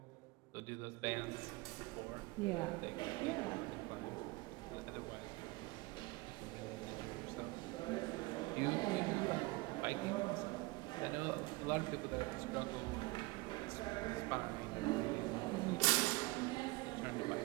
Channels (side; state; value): left; quieter; 23.5 dB